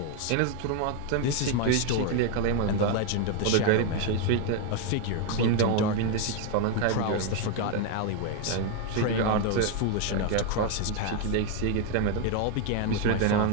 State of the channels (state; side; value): different; both; correlation 0.01